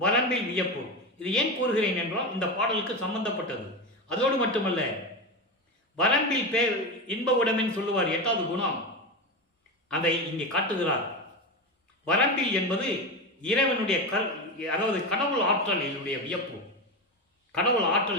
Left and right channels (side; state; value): both; normal; correlation 0.18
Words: வரம்பில் வியப்பு. இது ஏன் கூறுகிறேன் என்றால் இந்த பாடலுக்கு சம்பந்தப்பட்டது. அதோடு மட்டுமல்ல, வரம்பில் பேர் இன்ப உடமைன்னு சொல்லுவார், 8வது குணம், அதை இங்கே காட்டுகிறார். வரம்பில் என்பது இறைவனுடைய அதாவது கடவுள் ஆற்றல். என்னுடைய வியப்பு, கடவுள்